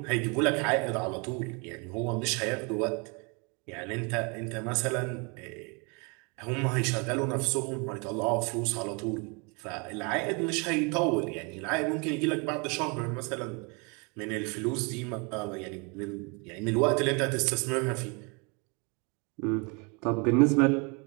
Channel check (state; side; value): quieter; left; 32.0 dB